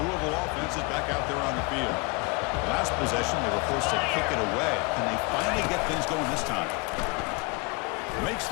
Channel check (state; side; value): quieter; right; 29.2 dB